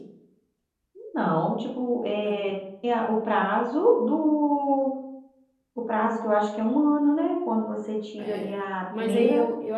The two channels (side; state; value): both; identical; correlation 1.00